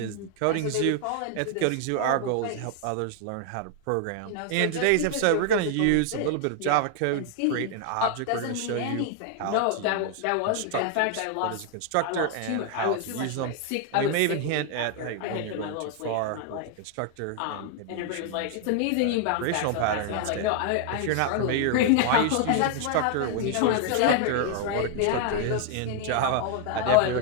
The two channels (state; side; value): different; both; correlation 0.00